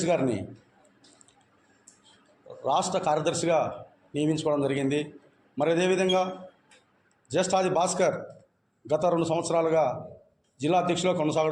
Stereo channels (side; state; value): both; identical; correlation 1.00